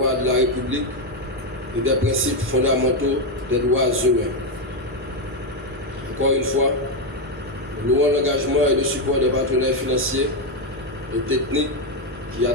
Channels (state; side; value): normal; both; correlation 0.06